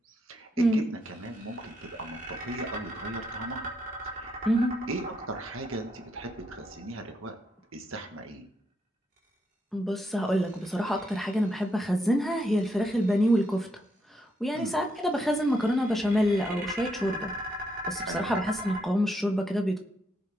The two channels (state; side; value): normal; both; correlation 0.78